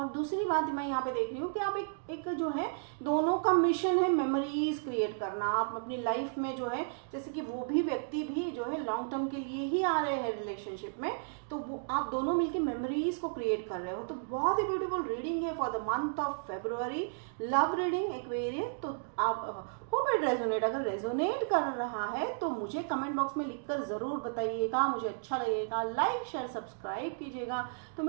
दूसरी बात मैं यहाँ पे देख रही हूँ कि आप एक जो है दोनों का मिशन है मेमोरीज क्रिएट करना। आप अपनी लाइफ में जो है, जैसे कि वो भी व्यक्ति भी जो है लॉन्ग टर्म के लिए ही आ रहे हैं रिलेशनशिप में, तो वो आप दोनों मिलकर मेमोरीज को क्रिएट कर रहे हो। तो बहुत ही ब्यूटीफुल रीडिंग है for the month of February, love reading Aquarian. तो आप होप इट रेजोनेट, अगर रेजोनेट कर रहा है तो मुझे कमेंट बॉक्स में लिखकर जरूर बताइएगा, मुझे अच्छा लगेगा। लाइक शेयर सब्सक्राइब कीजिएगा। तो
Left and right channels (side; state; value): left; silent; digital silence